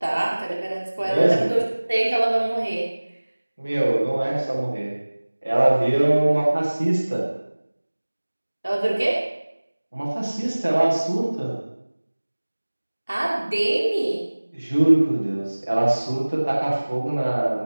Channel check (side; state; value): both; inverted; correlation -1.00